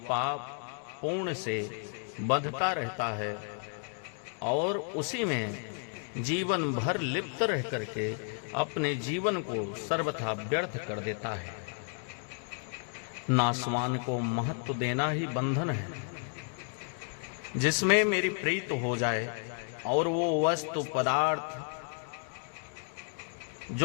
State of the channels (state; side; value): silent; right; 56 dB below the other